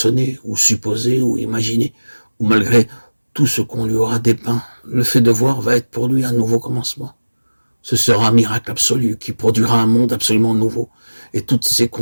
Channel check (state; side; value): inverted; both; correlation -1.00